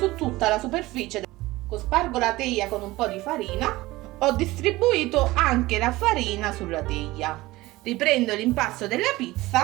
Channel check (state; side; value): quieter; left; 19.1 dB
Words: tutta la superficie. Spargo la teglia con un po' di farina. Ho distribuito anche la farina sulla teglia. Riprendo l'impasto della